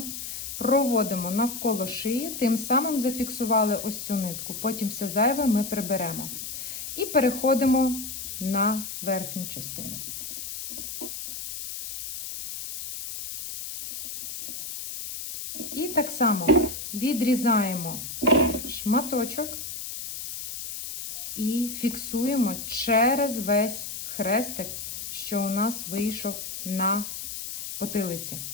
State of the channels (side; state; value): left; noise; hiss, 7 dB below the sound